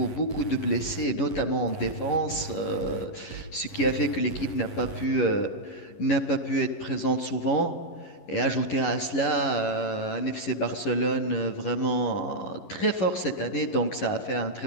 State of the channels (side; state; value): right; late; 11 ms